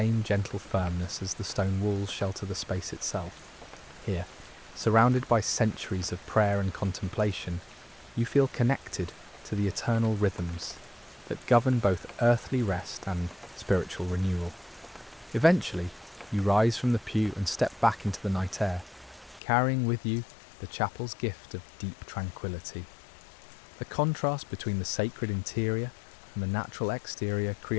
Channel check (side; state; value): right; drops out; at 19.4 s